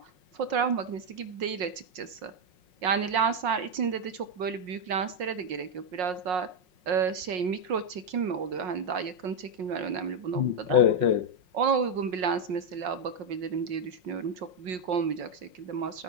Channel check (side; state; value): left; late; 5.5 ms